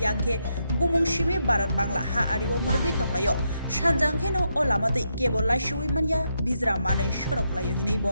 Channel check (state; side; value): inverted; both; correlation -0.81